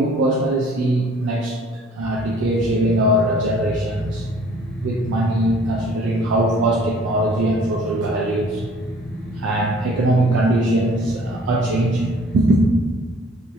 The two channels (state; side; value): normal; both; correlation 0.54